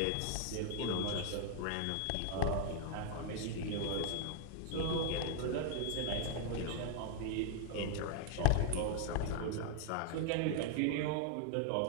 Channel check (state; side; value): different; both; correlation 0.00